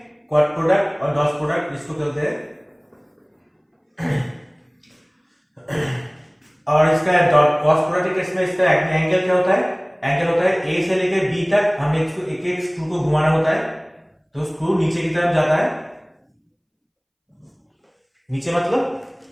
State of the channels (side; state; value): both; identical; correlation 1.00